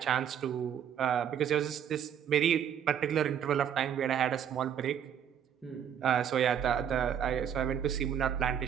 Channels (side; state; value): left; quieter; 8.9 dB